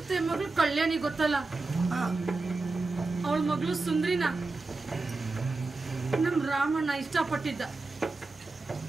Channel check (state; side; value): quieter; left; 3.5 dB